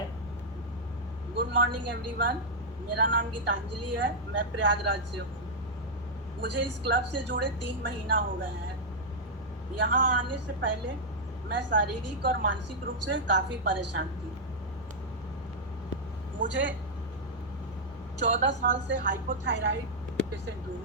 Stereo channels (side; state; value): both; normal; correlation -0.06